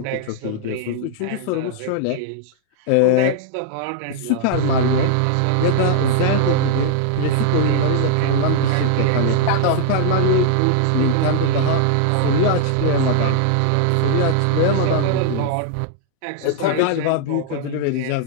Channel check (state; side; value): different; both; correlation -0.01